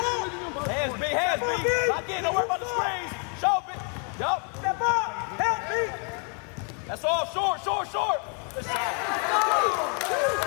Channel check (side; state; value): right; quieter; 39.6 dB